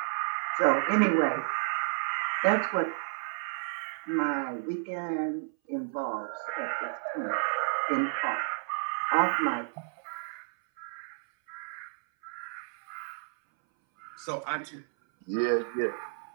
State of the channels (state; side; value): silent; left; 57 dB below the other